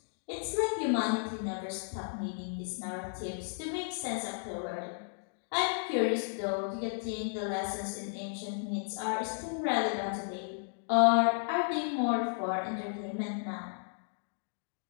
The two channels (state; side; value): silent; right; digital silence